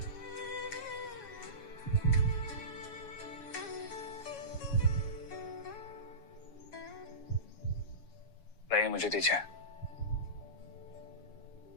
लाइए, मुझे दीजिए।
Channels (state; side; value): late; right; 7.2 ms